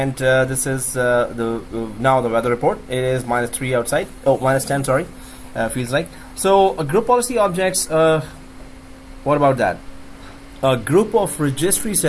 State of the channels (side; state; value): both; identical; correlation 1.00